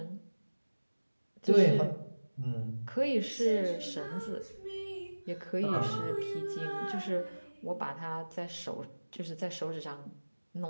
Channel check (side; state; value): both; inverted; correlation -1.00